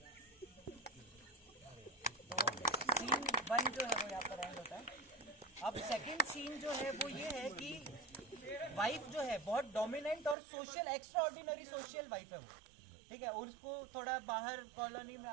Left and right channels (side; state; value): left; drops out; at 10.4 s